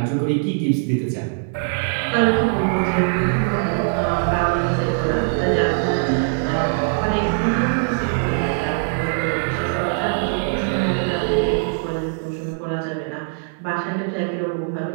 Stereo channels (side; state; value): left; silent; 65 dB below the other